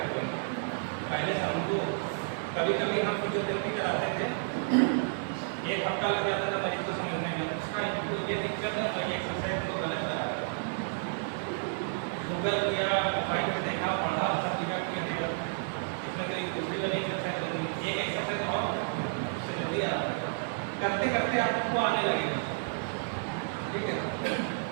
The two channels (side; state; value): left; silent; 57 dB below the other